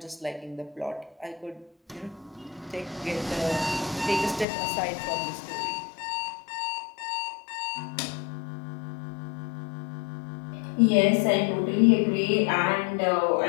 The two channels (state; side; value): drops out; right; at 4.5 s